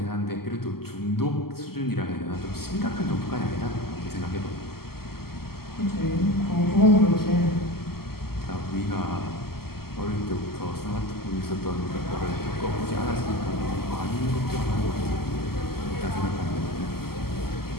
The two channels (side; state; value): right; late; 0.95 ms